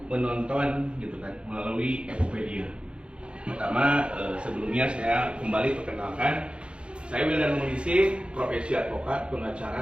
menonton, gitu kan, melalui Ekopedia? Pertama, sebelumnya saya kembali perkenalkan, saya Wildan Munisi, profesi advokat,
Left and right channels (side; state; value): left; late; 0.057 ms